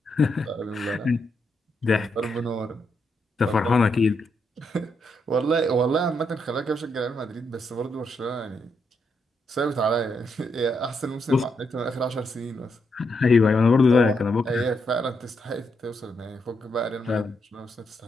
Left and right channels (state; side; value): normal; both; correlation 0.80